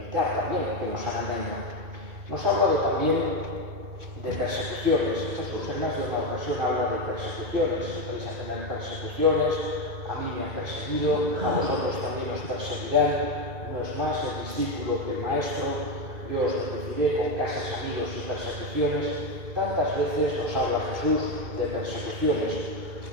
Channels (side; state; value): left; late; 2.2 ms